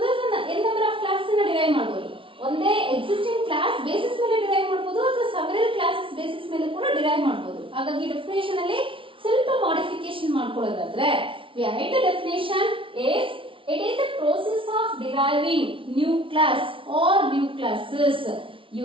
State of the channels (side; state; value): left; late; 0.25 ms